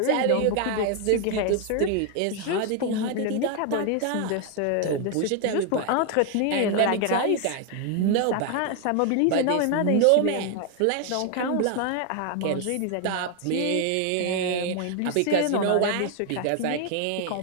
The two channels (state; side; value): different; both; correlation 0.01